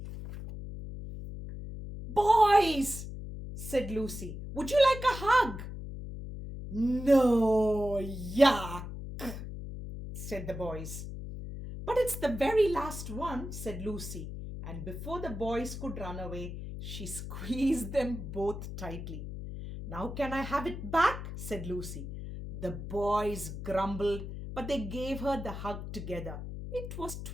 Boys, said Lucy, would you like a hug? No, yuck, said the boys. But it's the very last one, said Lucy, and before the boys could run away, she squeezed them both tightly. Now can I have it back? Said Lucy. The boys grumbled, but they gave her the hug together. It was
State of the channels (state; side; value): noise; left; hum, 8 dB below the sound